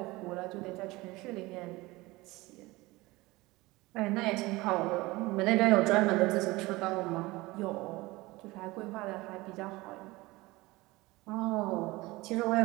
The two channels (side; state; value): left; quieter; 21.1 dB